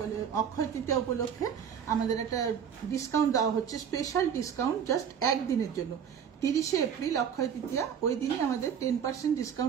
অক্ষয় তৃতীয়া উপলক্ষে আমাদের একটা ডিসকাউন্ট দেওয়া হচ্ছে, স্পেশাল ডিসকাউন্ট জাস্ট একদিনের জন্য। 30শে এপ্রিল অক্ষয় তৃতীয়া, ওই দিনই আমাদের 10%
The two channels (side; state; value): left; quieter; 7.9 dB